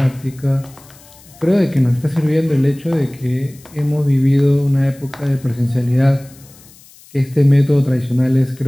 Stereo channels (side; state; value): left; noise; hiss, 25 dB below the sound